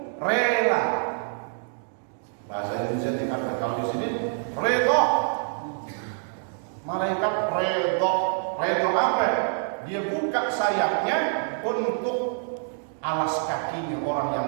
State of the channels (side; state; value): left; silent; digital silence